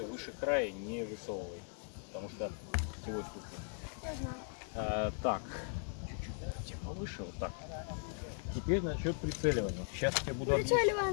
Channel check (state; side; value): silent; right; 52 dB below the other